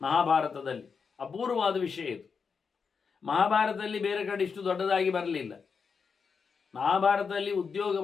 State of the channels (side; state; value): right; quieter; 5.7 dB